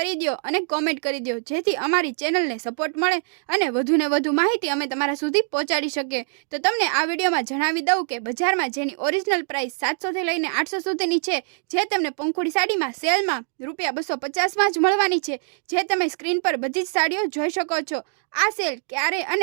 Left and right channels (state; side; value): silent; left; digital silence